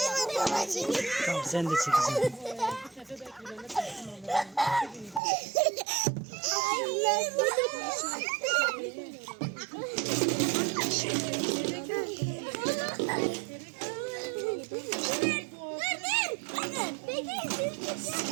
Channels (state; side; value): drops out; left; at 5.2 s